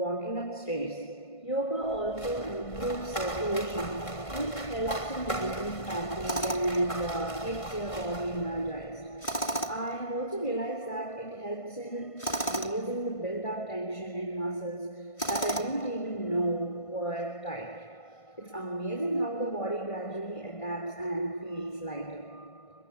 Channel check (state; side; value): late; right; 1.5 ms